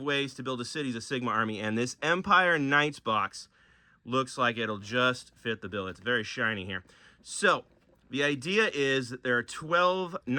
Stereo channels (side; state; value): both; identical; correlation 1.00